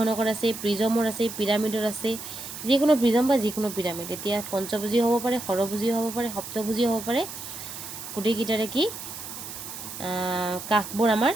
আছে, প্ৰিজমৰ আছে, পিৰামিডৰ আছে। যিকোনো প্ৰিজম বা যিকোনো পিৰামিড। এতিয়া পঞ্চভুজীয় হ'ব পাৰে, ষড়ভুজীয় হ'ব পাৰে, সপ্তভুজীয় হ'ব পাৰে। গোটেইকেইটাৰে কি কাষবোৰ আমাৰ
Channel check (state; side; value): noise; right; hiss, 10 dB below the sound